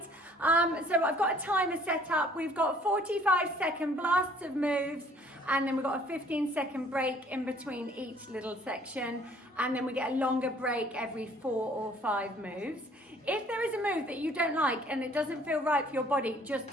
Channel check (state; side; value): normal; both; correlation 0.58